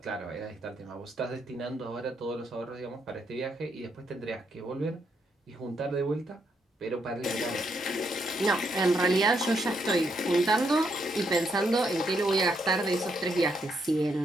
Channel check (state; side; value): normal; both; correlation 0.77